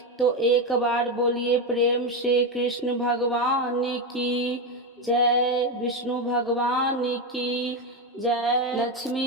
तो एक बार बोलिए प्रेम से कृष्ण भगवान की जय, विष्णु भगवान की जय, लक्ष्मी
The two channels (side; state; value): both; normal; correlation 0.11